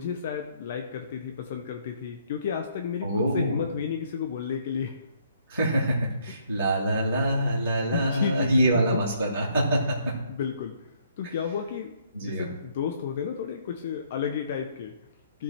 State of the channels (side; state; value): both; inverted; correlation -0.66